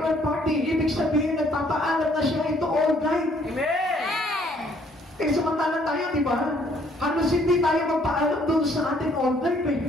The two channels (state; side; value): normal; both; correlation 0.64